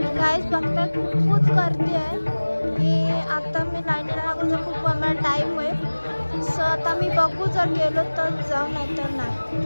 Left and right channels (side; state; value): both; inverted; correlation -1.00